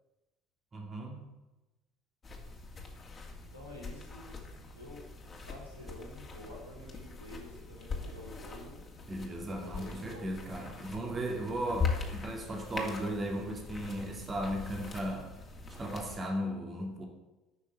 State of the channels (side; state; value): both; normal; correlation 0.67